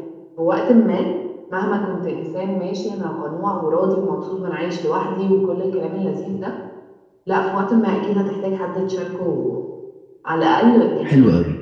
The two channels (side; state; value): both; identical; correlation 1.00